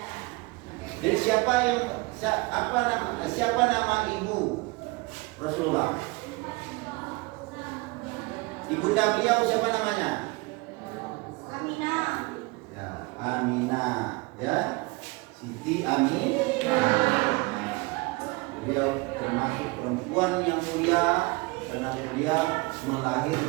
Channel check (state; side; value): quieter; left; 24.9 dB